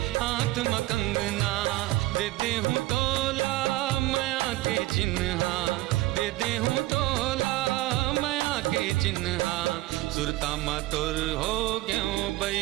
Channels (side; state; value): left; quieter; 18.6 dB